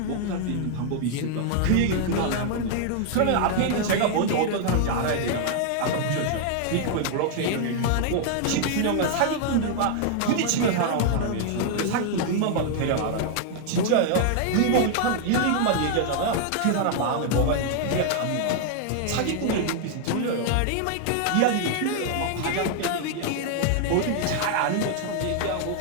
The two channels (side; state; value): both; different; correlation 0.00